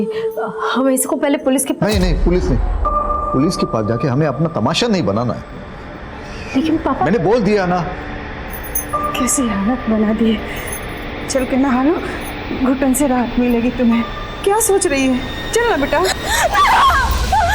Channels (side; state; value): both; identical; correlation 1.00